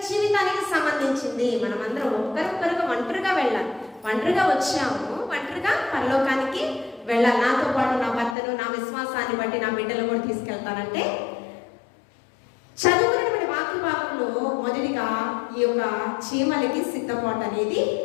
జీవితానికి సంబంధించింది. మనమందరం ఒక్కరొక్కరుగా ఒంటరిగా వెళ్ళాలి. ఒంటరిగా వచ్చాము, ఒంటరిగా పరలోకానికి వెళ్ళాలి. నాతో పాటు నా భర్తను, నా విశ్వాసాన్ని బట్టి నా బిడ్డలు కూడా తీసుకెళ్తానంటే చదువుకున్నటువంటి వాక్య భాగంలో మొదటిగా ఈ యొక్క చీమలకి సిద్ధపాటు అనేది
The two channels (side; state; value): right; drops out; at 8.3 s